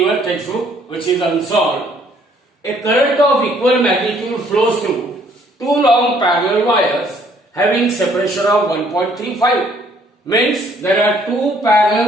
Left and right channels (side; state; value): both; normal; correlation 0.63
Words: textbook, which is unsolved. A current of equal magnitude flows through two long parallel wires having separation of 1.35. Means there are two